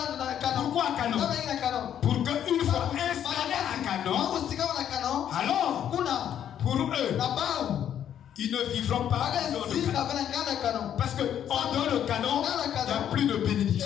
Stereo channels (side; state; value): right; quieter; 9.9 dB